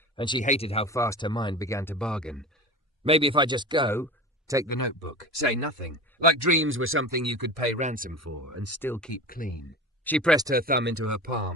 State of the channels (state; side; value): normal; both; correlation 0.31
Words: and she hated how fast her mind began to bargain. "Maybe if I just go, take the notebook, say nothing, like dreams were something you could pay ransom for and still keep clean." She pressed her thumb into her